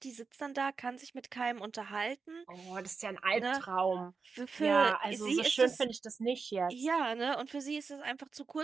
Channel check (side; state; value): left; quieter; 4.9 dB